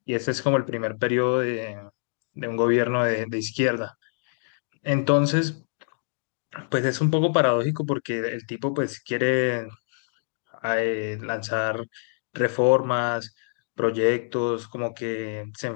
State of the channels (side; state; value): right; silent; digital silence